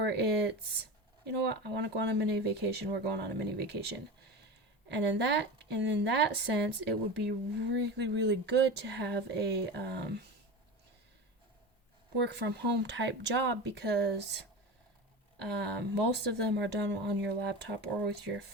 it's, you know what, I want to go on a mini vacation, we're going on a mini vacation. And in that sense, it would be really, really good to have a work from home type job, because most of them are done on your laptop or with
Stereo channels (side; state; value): both; normal; correlation 0.27